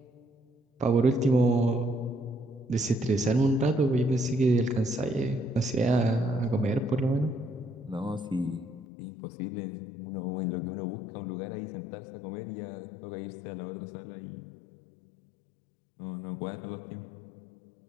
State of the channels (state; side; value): drops out; right; at 8.8 s